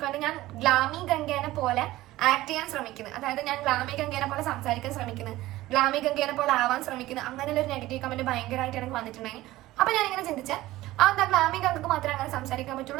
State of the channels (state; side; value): quieter; left; 16.8 dB